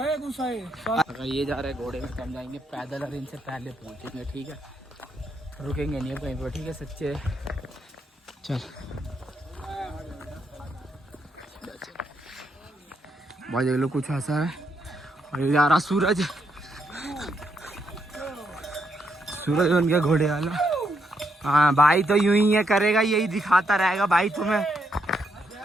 गुस्सा है। अगर ये जा रहे हैं घोड़े में, कम जाएंगे पैदल और इनसे पहले पहुंचेंगे। ठीक है, रुकेंगे नहीं कहीं पर। ठीक है सच्चे, चल भाई देख लो कुछ ऐसा है। और ये जा रहा सूरज, सूरज बन गया घोड़े वाला। हाँ भाई तो यूं ही है करेगा, यही दिखाता रहेगा भाई तुम्हें।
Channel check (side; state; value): both; normal; correlation 0.78